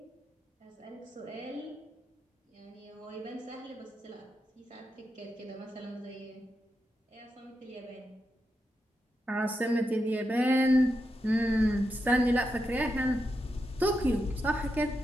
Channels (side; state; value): both; normal; correlation 0.86